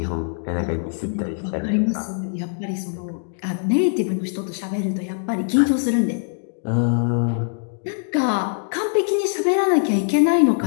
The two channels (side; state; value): right; silent; digital silence